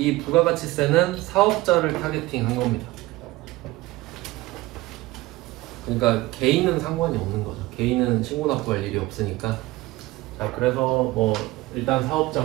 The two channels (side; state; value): left; quieter; 19.0 dB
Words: 부가가치세는 사업자를 타겟팅 한 겁니다. 그러니까 개인은 상관이 없는 거죠. 개인은 신고납부할 일이 없으니까. 자, 그래서 뭐 일단